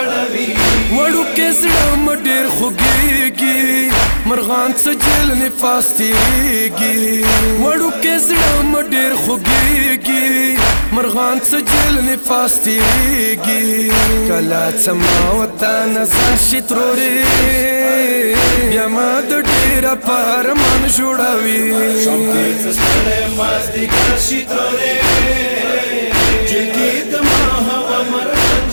وړو کې زړه مې ډېر خوږېږي مرغان څه جیل نفاس تیریږي وړو کې زړه مې ډېر خوږېږي مرغان څه جیل نفاس تیریږي کله څه ما وطن ځان شي ترورې بیا ما د ډېره په ارمان جوړوي شام کې څستړې مازدیګر شي ترورې جلکی دما هوا مرغان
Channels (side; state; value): both; inverted; correlation -1.00